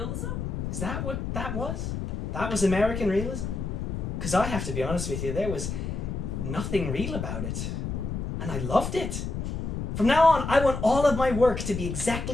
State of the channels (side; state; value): left; noise; rumble, 4 dB below the sound